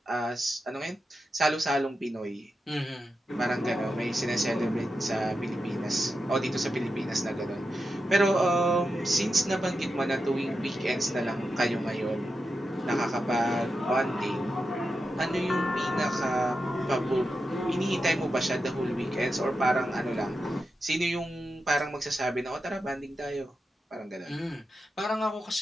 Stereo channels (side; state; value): both; normal; correlation 0.89